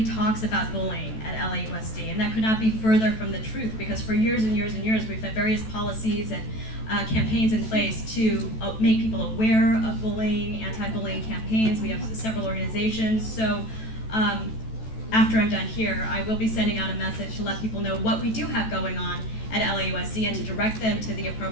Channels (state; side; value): late; right; 14 ms